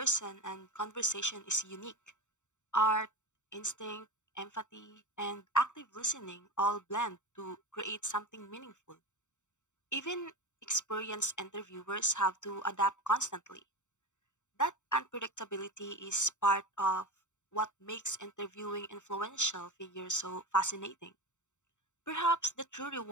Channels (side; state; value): right; late; 0.84 ms